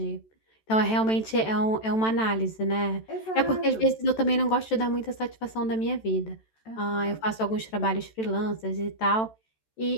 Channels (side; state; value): right; late; 14 ms